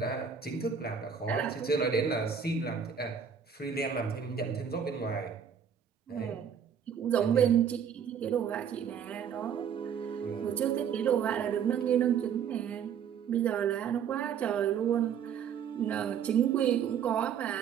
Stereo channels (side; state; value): left; quieter; 7.6 dB